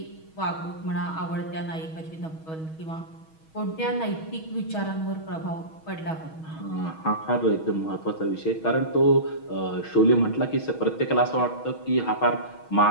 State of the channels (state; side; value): late; right; 6.3 ms